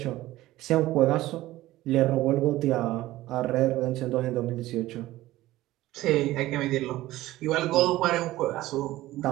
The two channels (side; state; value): left; quieter; 16.4 dB